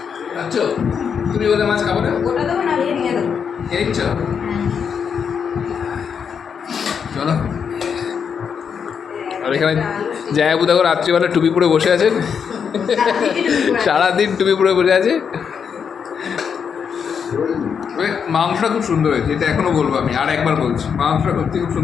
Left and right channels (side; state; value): right; quieter; 6.9 dB